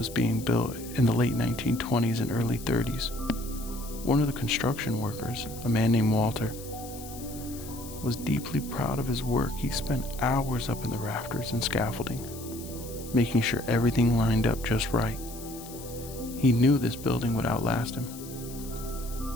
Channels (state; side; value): noise; left; hiss, 15 dB below the sound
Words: being built in the late 1920s and early 30s, one of the construction workers, a man named Walter, was deeply proud of his work. He spent hours up in the rafters and scaffolding, making sure everything lined up just right. He knew this building would outlast him.